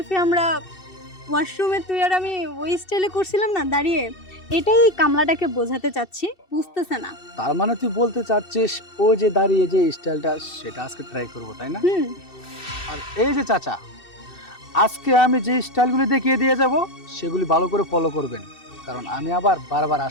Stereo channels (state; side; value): late; right; 2.7 ms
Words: আমরা ওয়াশরুমে তুই আর আমি ওই স্টাইলে করছিলাম না দাঁড়িয়ে? এটাই কামলাটাকে বোঝাতে চাচ্ছি, বুঝতেছে না। তার মানে তুই বলতে চাচ্ছিস ও যে দাঁড়িয়ে যে স্টাইলটা সেটা আজকে ট্রাই করবো, তাই না? হুম। আর এই যে চাচা, আজকে আমি যে স্টাইলগুলি দেখিয়ে দিয়ে যাব সেগুলি ভালো করে ফলো করবেন, কারণ আমি আবার বারবার